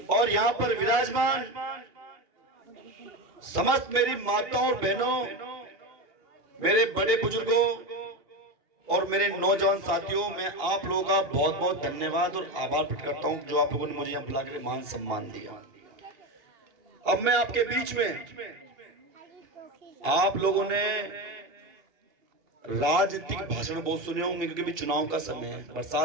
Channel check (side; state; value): left; late; 2.8 ms